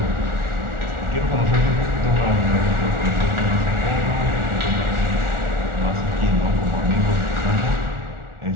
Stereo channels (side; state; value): left; late; 1.4 ms